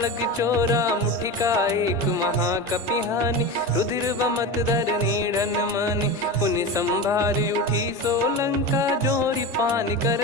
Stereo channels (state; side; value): normal; both; correlation 0.24